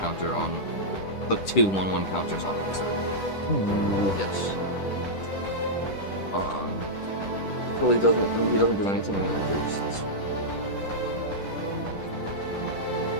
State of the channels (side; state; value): right; late; 10 ms